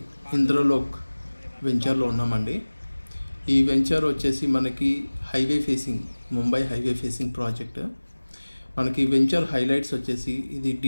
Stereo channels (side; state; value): both; inverted; correlation -1.00